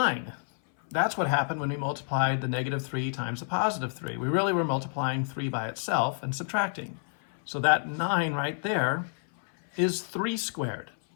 That's what happened when we multiplied the negative 3 times the positive 3. We really were multiplying 3 by itself and subtracting. So that 9 right there is 3 squared.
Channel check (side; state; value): right; silent; 59 dB below the other